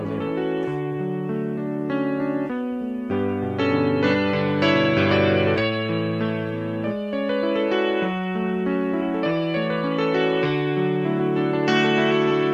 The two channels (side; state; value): both; identical; correlation 1.00